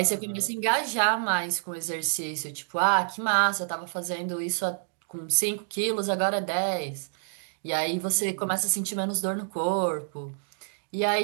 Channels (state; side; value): silent; left; digital silence